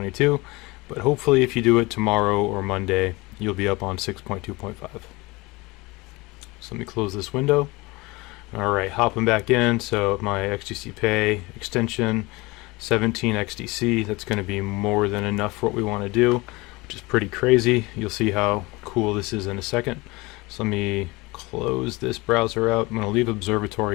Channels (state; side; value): quieter; right; 23.2 dB